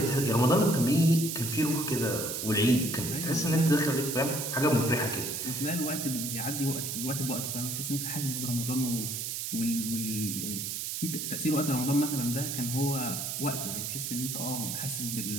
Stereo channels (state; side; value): noise; right; hiss, 3 dB below the sound